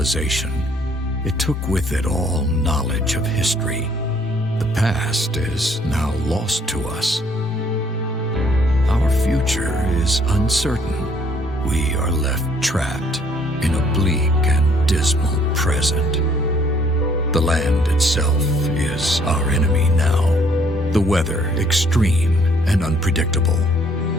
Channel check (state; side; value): normal; both; correlation 0.63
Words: it took with it all knowledge of history. The past is now lost to us. Our future is uncertain. We are left trapped in a bleak and dismal present. The land itself is our enemy now. The weather extreme and unpredictable.